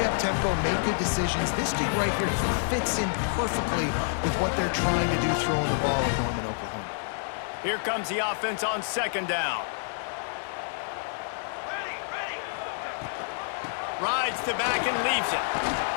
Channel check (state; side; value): silent; right; 57 dB below the other